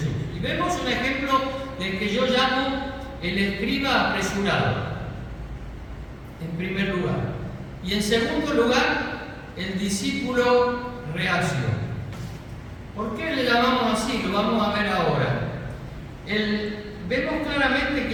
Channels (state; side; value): identical; both; correlation 1.00